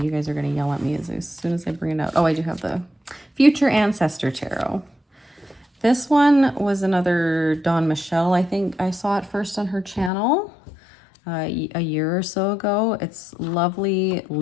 guys are going to yell at me as soon as I bring it out. Oh, I do have the Future Ancestor Tarot. This one was another Dawn Michelle. I think I saw it first on her channel a year or so ago. It's lovely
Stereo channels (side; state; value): right; drops out; at 10.1 s